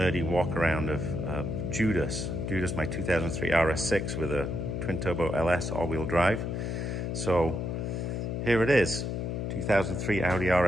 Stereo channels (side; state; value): left; noise; hum, 3 dB below the sound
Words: walk around of Judas, my 2003 RS6 with a twin-turbo LS all-wheel drive. So here it is, 2003 Audi